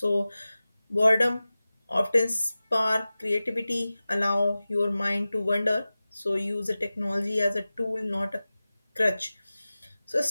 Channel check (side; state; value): both; inverted; correlation -0.96